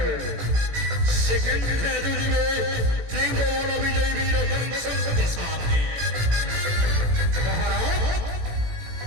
সেখানে দুদিবে ত্রিভুবন বিজয়ী বীর সংসদ সাথে মহারাজ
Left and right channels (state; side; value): late; left; 18 ms